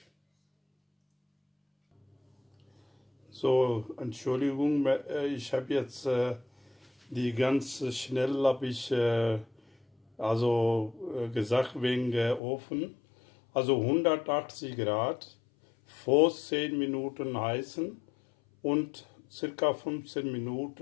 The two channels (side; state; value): right; drops out; at 12.4 s